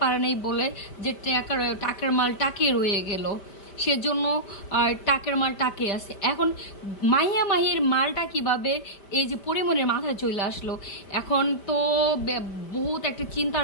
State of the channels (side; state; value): right; late; 5.0 ms